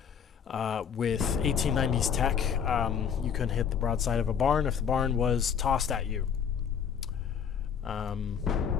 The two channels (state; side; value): quieter; right; 7.6 dB